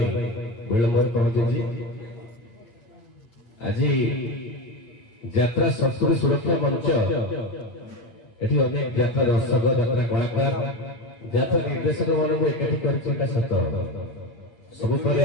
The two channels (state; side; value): late; right; 8.4 ms